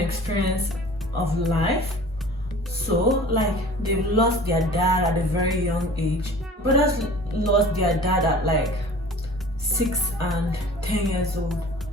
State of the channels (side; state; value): both; normal; correlation 0.43